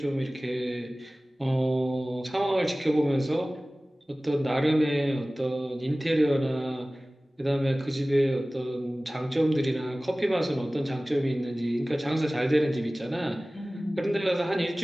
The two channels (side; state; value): both; normal; correlation 0.98